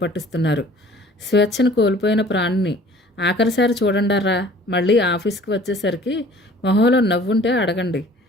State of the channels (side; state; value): both; normal; correlation 0.50